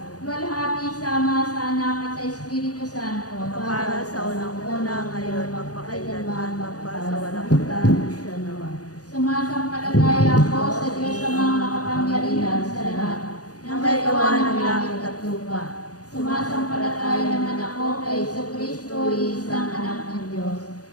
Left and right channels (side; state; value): right; late; 0.67 ms